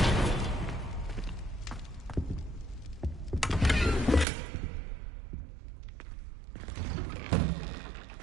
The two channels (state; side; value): drops out; left; at 4.2 s